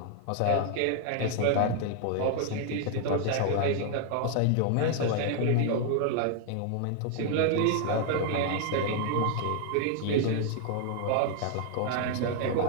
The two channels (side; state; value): both; different; correlation 0.00